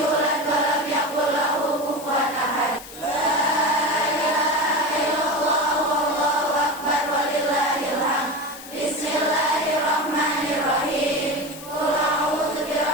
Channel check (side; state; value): left; noise; hiss, 15 dB below the sound